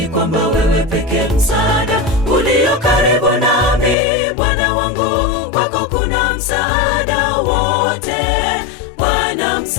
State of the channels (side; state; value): right; drops out; at 4.0 s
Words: kwamba wewe pekee msaada ulio karibu nami. Bwana wangu, kwako kuna msaada wote. Bwana,